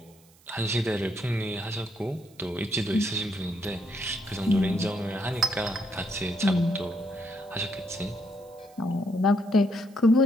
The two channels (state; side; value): noise; right; hiss, 29 dB below the sound